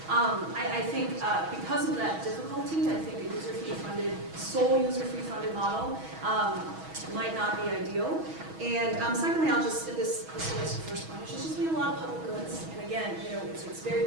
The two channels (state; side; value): late; left; 6.2 ms